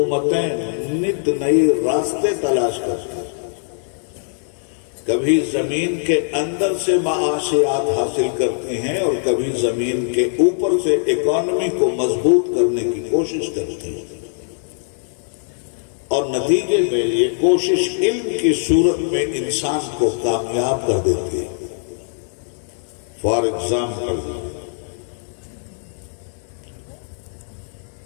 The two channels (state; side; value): silent; right; digital silence